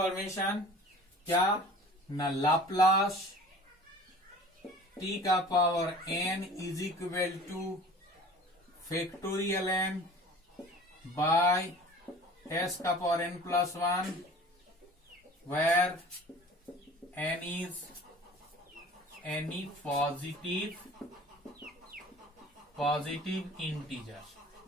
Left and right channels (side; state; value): both; normal; correlation 0.44